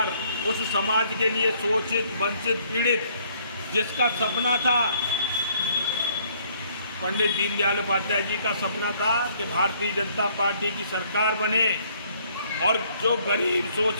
उस समाज के लिए शोषित, वंचित, पीड़ित, जिसका सपना था, पंडित दीनदयाल उपाध्याय जी का सपना था कि भारतीय जनता पार्टी की सरकार बने और जो गरीब,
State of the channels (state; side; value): inverted; both; correlation -0.64